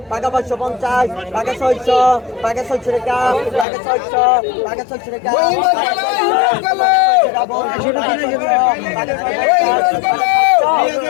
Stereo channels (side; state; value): right; drops out; at 3.7 s